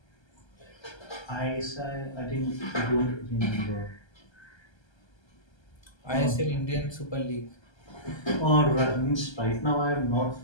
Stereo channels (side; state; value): right; late; 1.3 ms